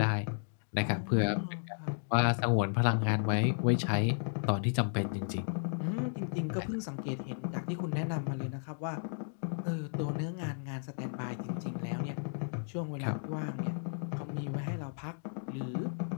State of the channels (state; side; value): silent; right; digital silence